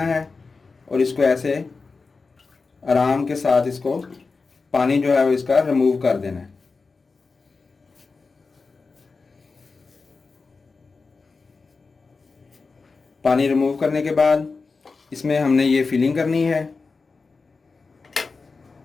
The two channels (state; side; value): quieter; right; 4.3 dB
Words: है और इसको ऐसे आराम के साथ इसको पानी जो है वो इसका रिमूव कर देना है। पानी रिमूव करने के बाद इसमें हमने ये फिलिंग करनी है